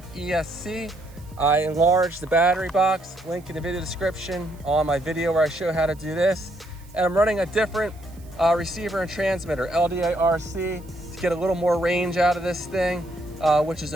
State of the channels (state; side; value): noise; right; hiss, 27 dB below the sound